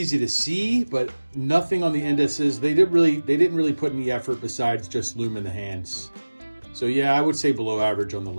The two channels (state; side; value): inverted; both; correlation -1.00